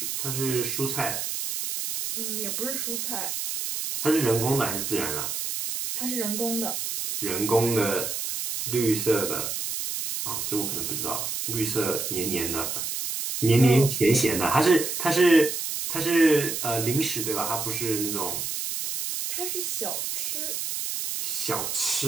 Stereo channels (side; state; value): right; noise; hiss, 3 dB below the sound